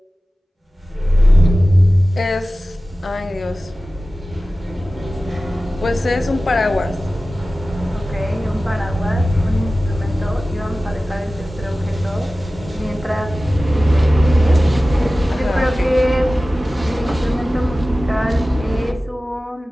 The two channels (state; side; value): normal; both; correlation 0.96